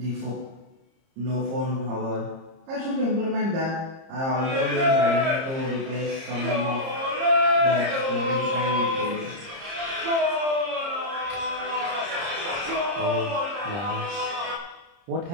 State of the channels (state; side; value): late; left; 30 ms